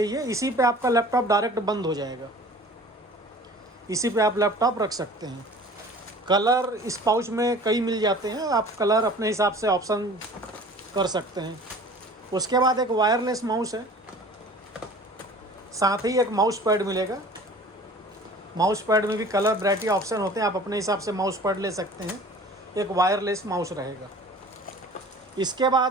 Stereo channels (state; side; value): normal; both; correlation 0.45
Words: ये, इसी पे आपका लैपटॉप डायरेक्ट बंद हो जाएगा। इसी पे आप लैपटॉप रख सकते हैं। कलर इस पाउच में कई मिल जाते हैं, आप कलर अपने हिसाब से ऑप्शन कर सकते हैं। उसके बाद एक वायरलेस माउस है, साथ ही एक माउस पैड मिलेगा। माउस पैड में भी कलर वैरायटी ऑप्शन होते हैं, आप अपने हिसाब से माउस पैड ले सकते हैं। एक वायरलेस माउस रहेगा। इसके